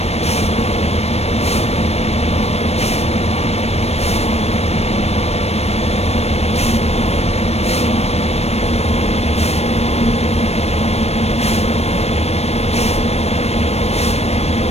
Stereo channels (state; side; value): late; right; 0.31 ms